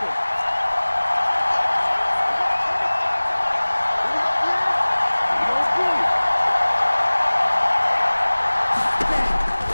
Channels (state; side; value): inverted; both; correlation -1.00